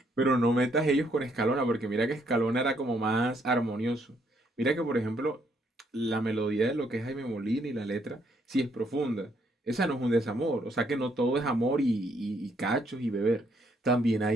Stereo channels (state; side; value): normal; both; correlation 0.71